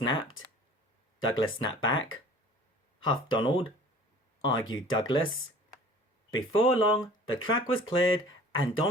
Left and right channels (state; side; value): normal; both; correlation 0.47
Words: Douglas snapped back. Huffed Donald. Argued Douglas. Before long, the track was cleared and